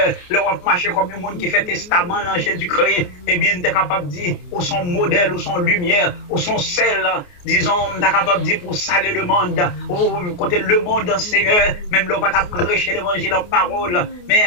le roi marcher comme un monde qui fait testament dans Jésus-Christ. Eh bien, tu es capable de dire, où son modèle, où son lumière, où son celle, disons, on est capable de dire pour saler le monde, ou côté le monde, Seigneur, même là, on va prêcher l'évangile en parole, mais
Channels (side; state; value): right; late; 28 ms